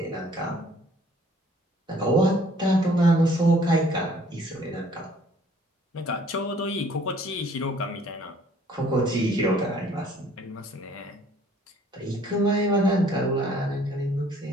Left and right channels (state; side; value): normal; both; correlation 0.58